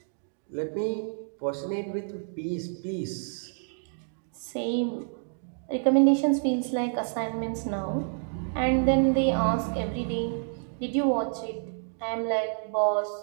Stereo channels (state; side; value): silent; left; digital silence